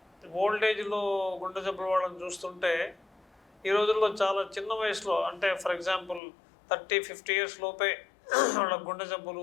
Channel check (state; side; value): drops out; right; at 6.2 s